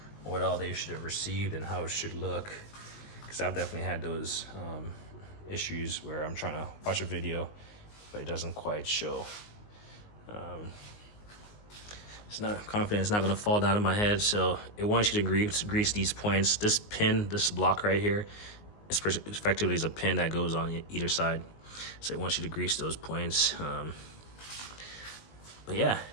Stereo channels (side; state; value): right; late; 19 ms